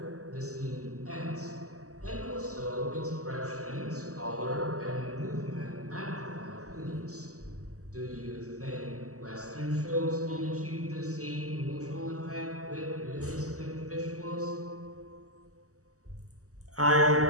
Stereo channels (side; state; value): left; late; 0.66 ms